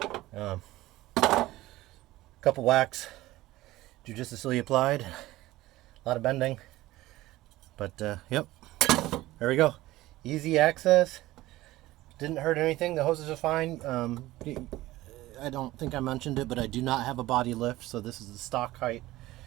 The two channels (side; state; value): left; quieter; 17.2 dB